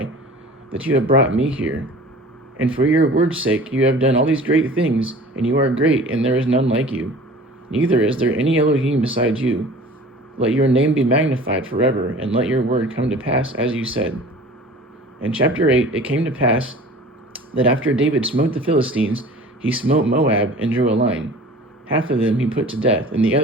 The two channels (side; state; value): both; normal; correlation 0.44